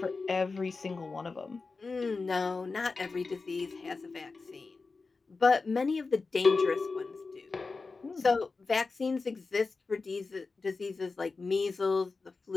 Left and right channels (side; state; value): right; quieter; 4.1 dB